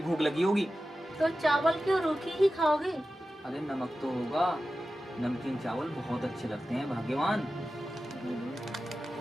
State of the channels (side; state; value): both; normal; correlation 0.94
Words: लगी होगी। तो चावल क्यों रूखी ही खाओगे? अरे नमक तो होगा, नमकीन चावल बहुत अच्छे लगते हैं भाग्यवान।